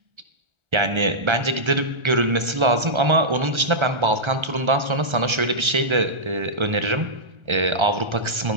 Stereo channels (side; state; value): left; late; 1.3 ms